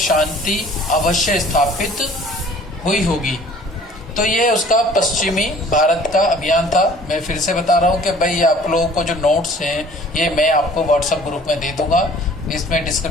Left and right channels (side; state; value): both; normal; correlation 0.51